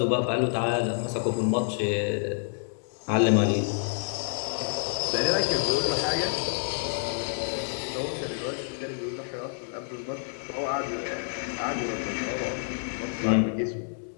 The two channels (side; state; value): right; silent; digital silence